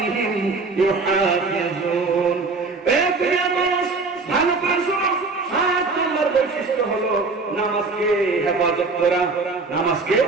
ইউহাফিজুন। ভালো করে শুনো, 7 নাম্বার বৈশিষ্ট্য হলো নামাজকে হেফাজত করা। নামাজকে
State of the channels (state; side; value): quieter; left; 4.0 dB